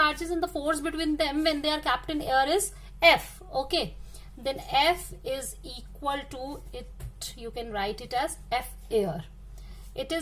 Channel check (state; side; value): identical; both; correlation 1.00